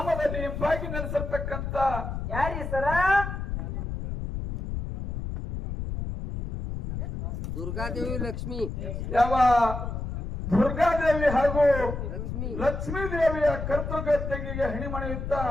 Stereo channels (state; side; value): noise; left; rumble, 5 dB below the sound